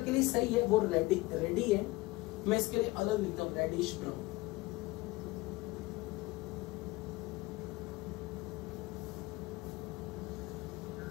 लिए सही है, वो रेडी है। मैं इसके लिए अलग लिखता हूं, रेडिश ब्राउन।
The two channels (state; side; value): quieter; right; 20.4 dB